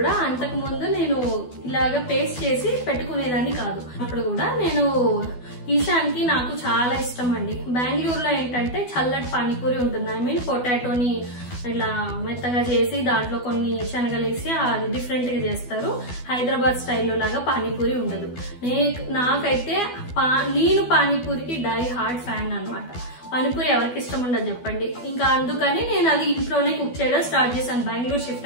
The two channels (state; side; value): late; right; 12 ms